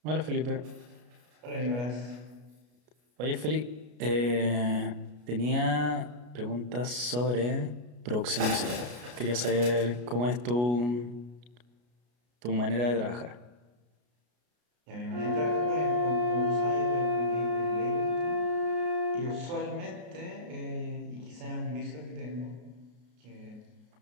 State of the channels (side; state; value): left; late; 33 ms